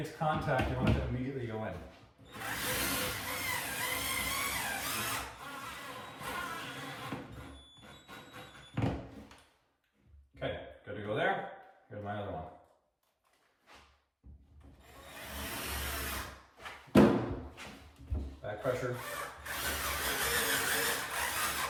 contact, you want it to immediately go in. Okay, good to go there. Here's my other one. Back pressure.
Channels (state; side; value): identical; both; correlation 1.00